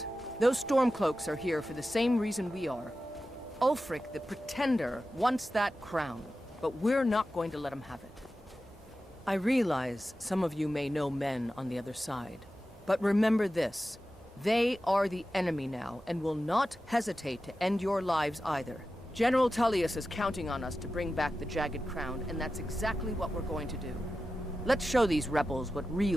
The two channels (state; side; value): normal; both; correlation 0.93